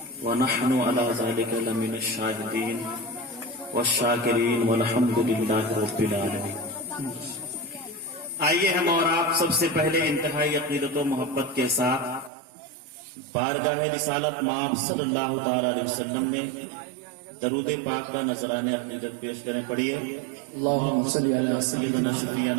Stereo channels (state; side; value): drops out; left; at 12.3 s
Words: ونحن على ذلك لمن الشاہدین والشاکرین والحمد للہ رب العالمین۔ آئیے ہم اور آپ سب سے پہلے انتہائی عقیدت و محبت کے ساتھ بارگاہ رسالت مآب صلی اللہ تعالی علیہ وسلم میں درود پاک کا نذرانِ عقیدت پیش کریں۔ پڑھیے اللہم صلی علی سیدنا